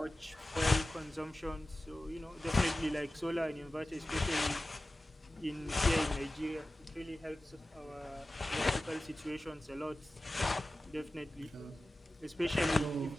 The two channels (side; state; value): both; normal; correlation 0.95